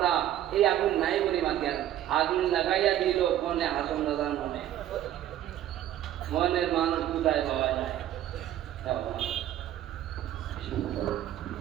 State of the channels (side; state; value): left; quieter; 12.1 dB